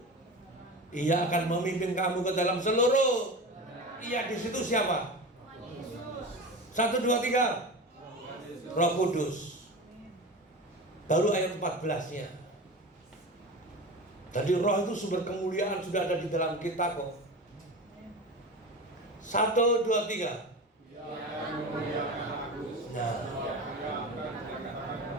Ia akan memimpin kamu ke dalam seluruh. Ia di situ siapa? 1, 2, 3. Roh Kudus. Baru ayat 14-nya. Tadi roh itu sumber kemuliaan sudah ada di dalam kita kok. 1, 2, 3. Nah,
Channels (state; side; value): normal; both; correlation 0.29